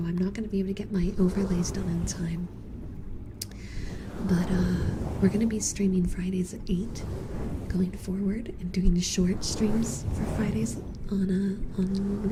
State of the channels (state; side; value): identical; both; correlation 1.00